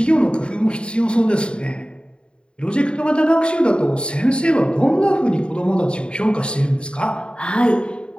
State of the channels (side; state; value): right; late; 0.053 ms